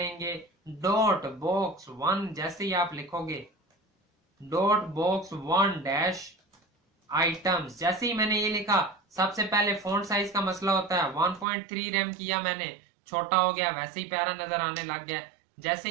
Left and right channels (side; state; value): left; drops out; at 11.5 s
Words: डॉट बॉक्स 1, जैसे ही आप लिखोगे डॉट बॉक्स 1 आइटम्स। जैसे ही मैंने ये लिखा, सबसे पहले फॉन्ट साइज का मसला होता है, 1.3 रैम किया मैंने, छोटा हो गया, वैसे ही प्यारा नजर आने लग गया। जैसे